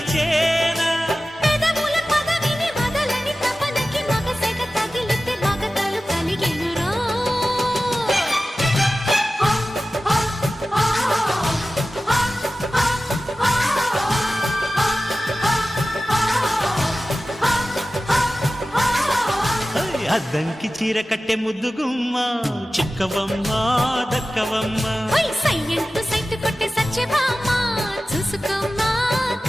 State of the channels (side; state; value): both; normal; correlation 0.95